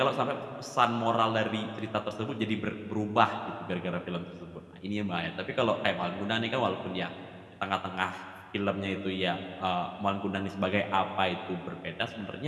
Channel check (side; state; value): both; identical; correlation 1.00